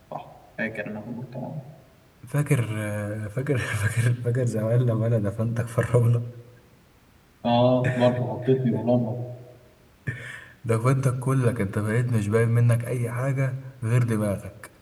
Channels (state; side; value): identical; both; correlation 1.00